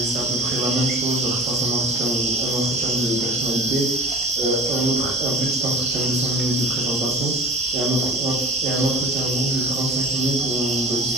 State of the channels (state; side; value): normal; both; correlation 0.39